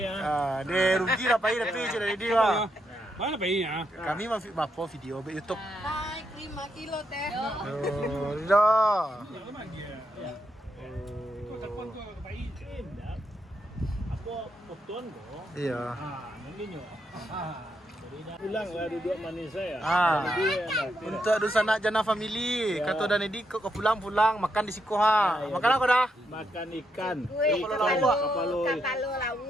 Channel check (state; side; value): normal; both; correlation 0.80